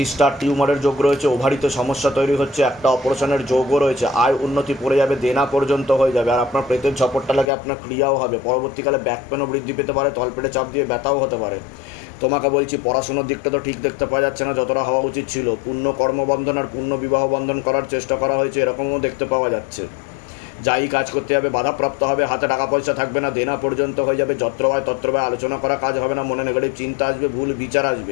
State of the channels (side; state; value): right; drops out; at 7.5 s